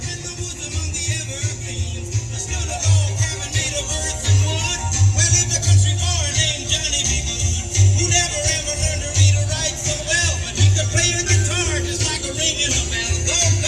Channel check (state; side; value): identical; both; correlation 1.00